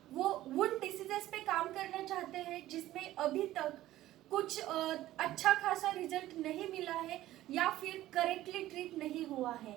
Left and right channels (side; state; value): left; quieter; 14.9 dB